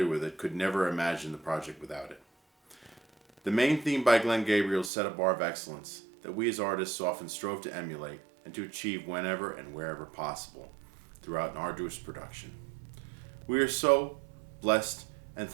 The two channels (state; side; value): drops out; left; at 4.9 s